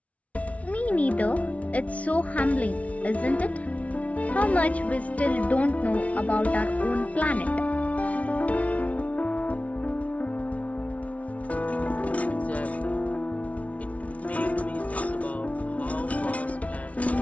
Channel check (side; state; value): right; late; 0.066 ms